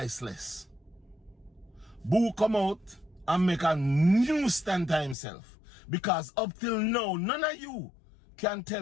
Boo come out and make a new stand to himself. Because up till now, none of you can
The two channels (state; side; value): drops out; right; at 5.2 s